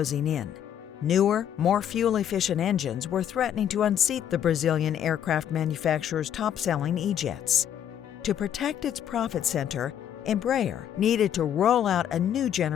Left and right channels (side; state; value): right; quieter; 9.8 dB